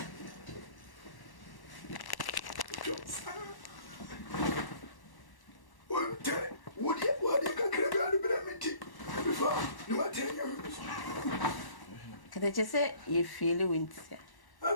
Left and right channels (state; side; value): late; right; 1.1 ms